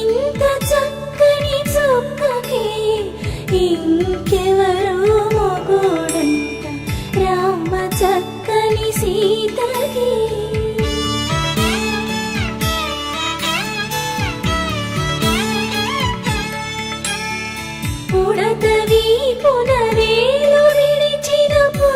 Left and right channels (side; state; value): both; identical; correlation 1.00